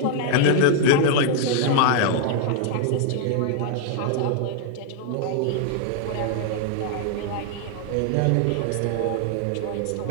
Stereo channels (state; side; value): different; both; correlation 0.00